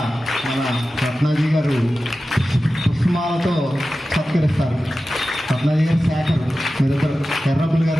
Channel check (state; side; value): normal; both; correlation 0.94